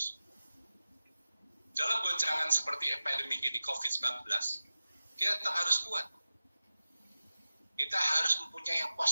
Dalam goncangan seperti epidemi ini COVID-19, kita tetap harus kuat. Kita harus mempunyai yang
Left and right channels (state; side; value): inverted; both; correlation -0.94